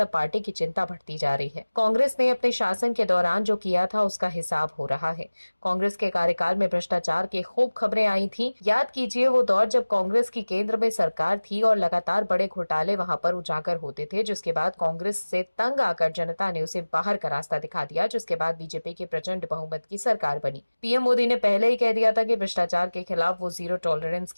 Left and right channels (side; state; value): both; inverted; correlation -1.00